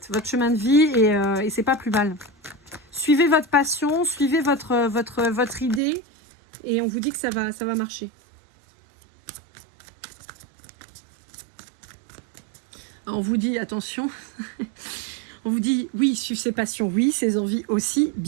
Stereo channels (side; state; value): left; drops out; at 5.8 s